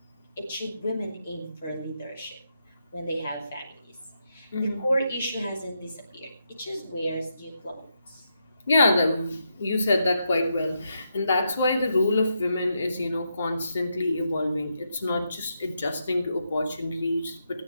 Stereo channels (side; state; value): both; inverted; correlation -0.82